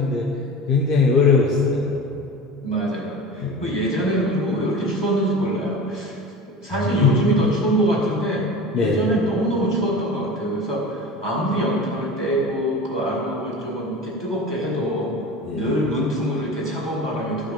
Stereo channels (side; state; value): both; normal; correlation 0.34